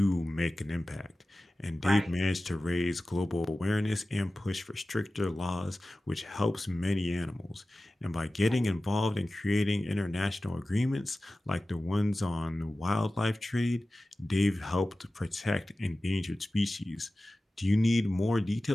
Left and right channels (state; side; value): normal; both; correlation 0.96